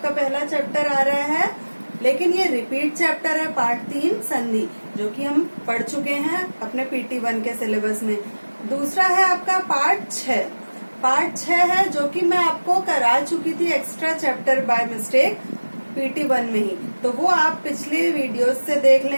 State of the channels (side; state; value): both; inverted; correlation -1.00